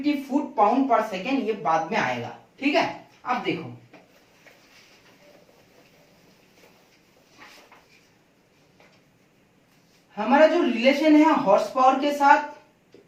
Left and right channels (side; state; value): both; identical; correlation 1.00